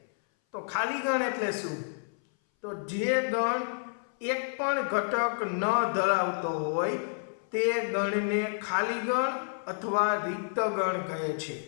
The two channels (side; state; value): right; silent; 58 dB below the other